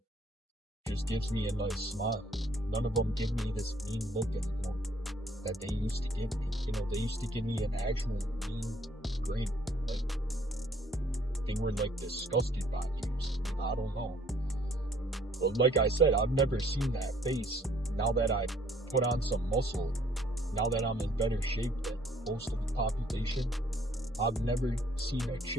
just gives me a nice smile. None of them give me this mean look anymore that they used to give me. They used to give me an actual mean grin. Like, they were like disgusted by you. I don't know. But like I said, I've never seen that face. Now that I put on some muscle, now that I'm in better shape than most of the population, I've never seen a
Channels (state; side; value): normal; both; correlation 0.62